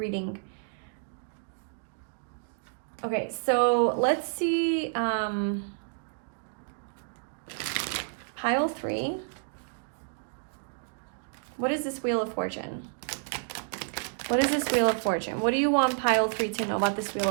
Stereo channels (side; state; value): left; silent; digital silence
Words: Okay, so let's see pile 3. What is this Wheel of Fortune? What is this Wheel of Fortune? What do you want pile 3 to know about this Wheel